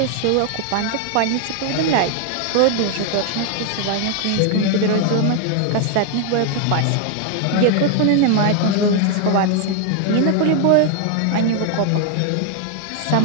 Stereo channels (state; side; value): different; both; correlation 0.01